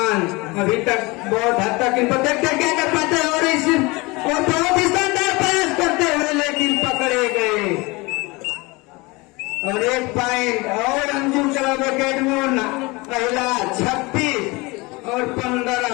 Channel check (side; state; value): right; quieter; 24.5 dB